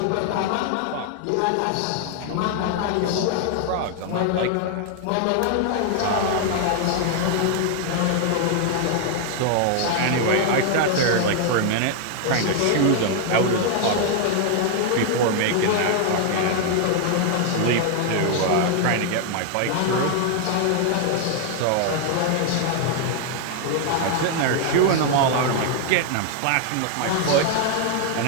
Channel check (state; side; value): different; both; correlation 0.00